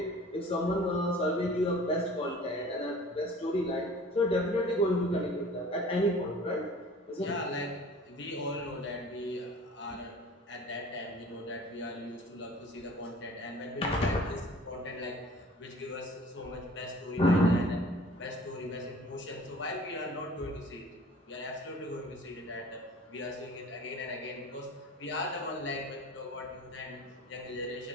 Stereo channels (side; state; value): both; normal; correlation 0.46